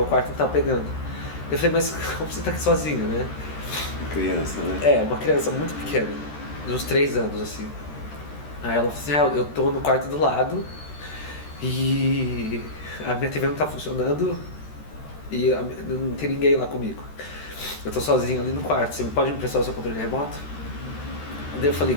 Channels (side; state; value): right; late; 13 ms